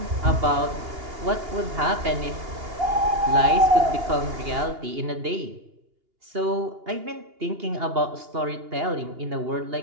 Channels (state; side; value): late; left; 2.8 ms